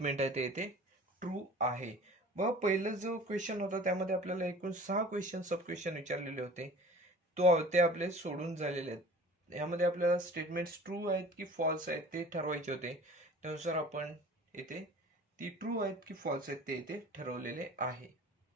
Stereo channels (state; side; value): normal; both; correlation 0.43